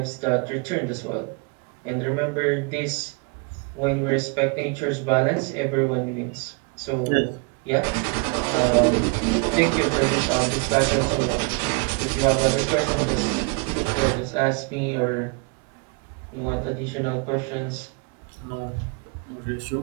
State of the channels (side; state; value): left; quieter; 31.6 dB